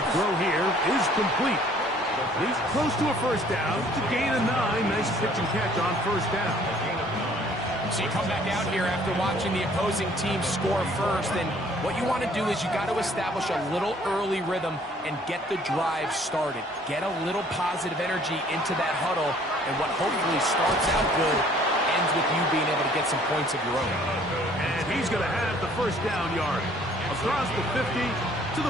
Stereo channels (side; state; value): both; normal; correlation 0.57